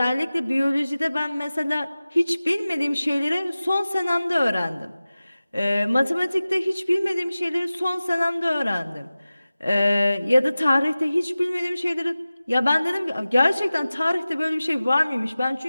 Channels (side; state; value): both; inverted; correlation -0.97